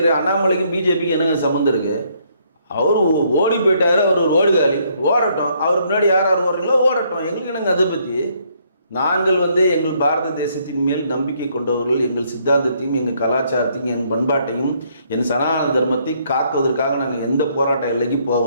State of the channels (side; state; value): both; inverted; correlation -0.69